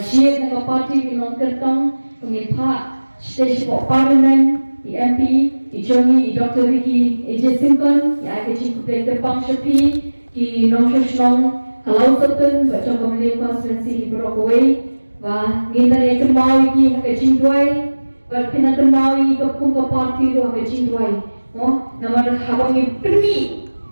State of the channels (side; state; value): both; inverted; correlation -1.00